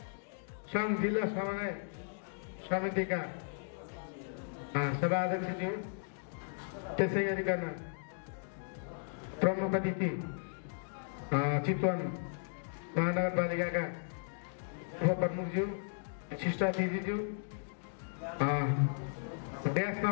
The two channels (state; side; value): silent; right; digital silence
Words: सङ्घ जिल्ला समन्वय समितिका सभाध्यक्षज्यू, त्यसै गरिकन प्रमुख अतिथि चितवन महानगरपालिकाका उपप्रमुखज्यू, शिष्टातिथिज्यू, ड्यासमा